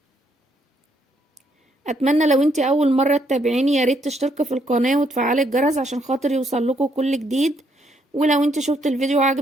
اتمنى لو انتي اول مرة تتابعيني ياريت تشتركي في القناة وتفعلي الجرس عشان خاطر يوصلكوا كل جديد، ولو انتي شفت الفيديو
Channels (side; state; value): both; normal; correlation 0.72